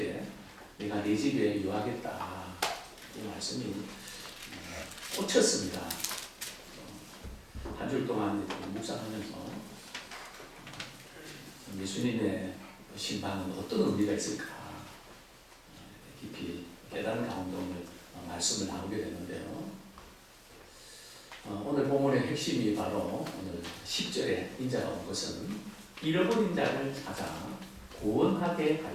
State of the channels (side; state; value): both; identical; correlation 1.00